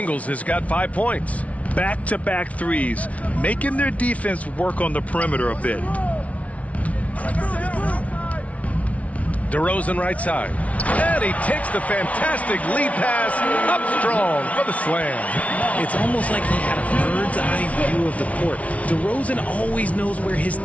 has got 5 points. Back-to-back threes, making their defense work on the perimeter a bit. DeRozan right side. And he takes the fantastic lead pass up strong for the slam. It's almost like he had a bird's-eye view of the court. DeRozan always knows where his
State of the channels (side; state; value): right; late; 0.066 ms